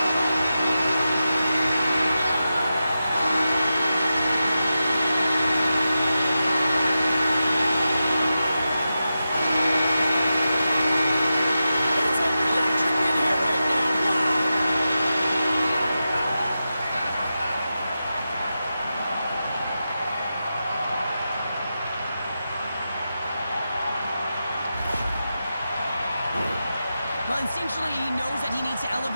Well, instinctually, he knows that he needs to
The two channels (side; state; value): both; inverted; correlation -0.91